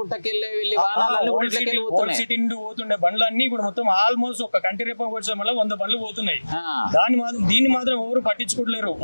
సిటీ నుండి పోతుండే బండ్లన్నీ ఇప్పుడు మొత్తం ఆల్మోస్ట్ ఒక కంటి రేపం వచ్చే వల్ల 100 బండ్లు పోతున్నాయి. దీన్ని మాత్రం ఎవరు పట్టించుకోలేరు.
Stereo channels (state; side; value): inverted; both; correlation -1.00